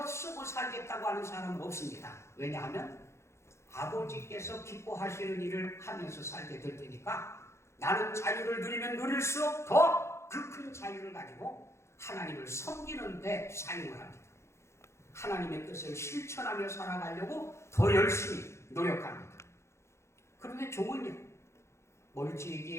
쓰고 살겠다고 하는 사람은 없습니다. 왜냐하면 아버지께서 기뻐하시는 일을 하면서 살게 될 테니까 나는 자유를 누리면 누릴수록 더 그 큰 자유를 가지고 하나님을 섬기는 데 사용을 합니다. 하나님의 뜻을 실천하며 살아가려고 더 열심히 노력합니다. 그런데 종은요,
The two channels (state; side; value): late; right; 0.13 ms